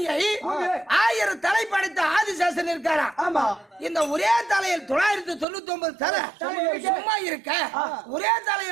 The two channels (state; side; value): drops out; left; at 5.5 s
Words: 1000 தலை படைத்த ஆதிசேஷன் இருக்காரா இந்த ஒரே தலையில் 999 தலை சும்மா இருக்க ஒரே